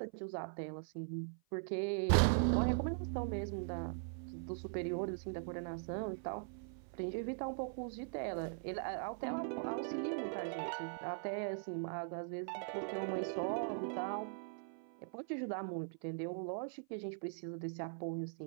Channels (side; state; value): left; silent; 50 dB below the other